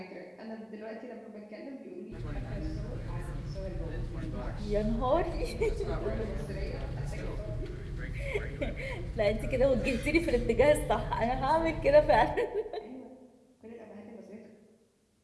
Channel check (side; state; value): both; identical; correlation 1.00